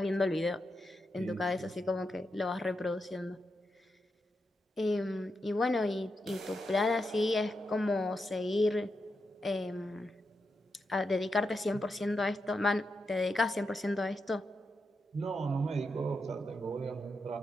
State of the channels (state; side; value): normal; both; correlation 0.86